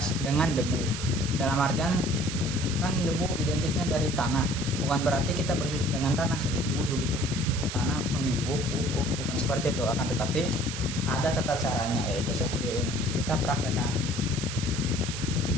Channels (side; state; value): right; noise; hiss, 7 dB below the sound